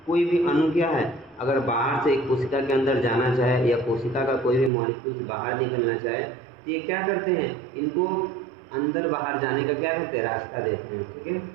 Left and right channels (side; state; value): left; drops out; at 4.7 s